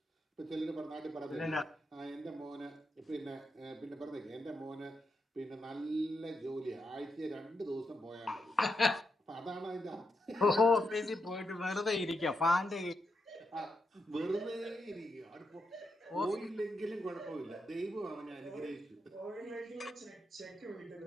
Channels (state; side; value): normal; both; correlation 0.83